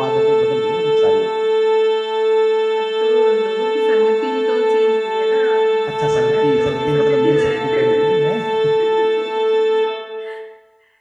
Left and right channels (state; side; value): identical; both; correlation 1.00